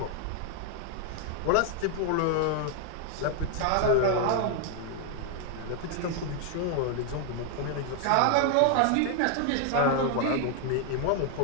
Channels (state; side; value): different; both; correlation 0.00